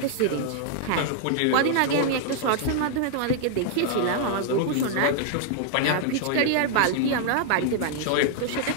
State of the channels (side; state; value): both; different; correlation -0.01